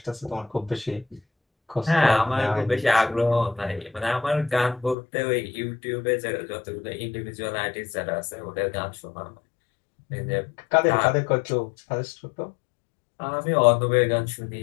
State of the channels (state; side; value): drops out; right; at 5.0 s